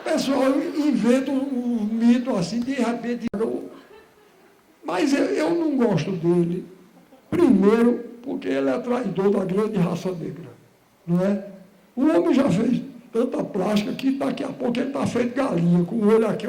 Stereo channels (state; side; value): identical; both; correlation 1.00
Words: inventa um mito assim, de repente. Mas eu não gosto dele. Primeiro, porque ele é traidor da grande raça negra. Não é? O homem já fez tanta plástica que daqui a pouco ele está feito galinha, com o olho aqui,